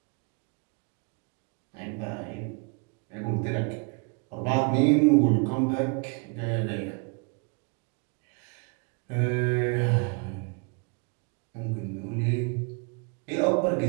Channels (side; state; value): left; quieter; 35.0 dB